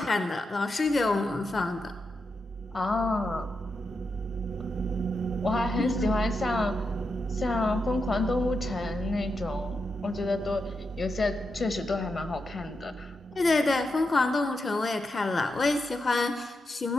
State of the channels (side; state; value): both; normal; correlation 0.86